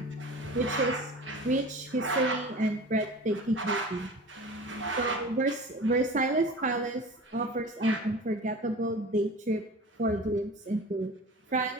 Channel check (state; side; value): normal; both; correlation 0.37